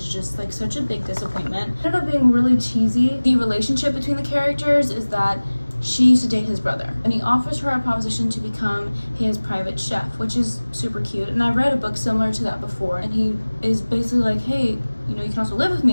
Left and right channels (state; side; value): inverted; both; correlation -1.00